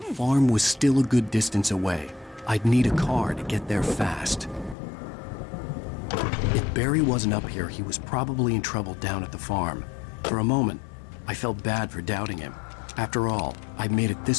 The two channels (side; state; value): right; drops out; at 4.8 s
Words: farm was still a good distance away. I'd need a car to get there fast. If Barry wasn't up here, he was probably in trouble down at the farm. For a moment, I felt bad for doubting him. After all, I'd made it